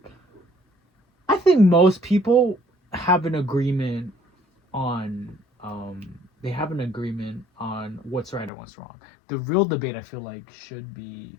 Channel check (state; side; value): drops out; right; at 8.5 s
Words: most people have an agreement on they have an agreement on what's right and what's wrong. The real debate I feel like should be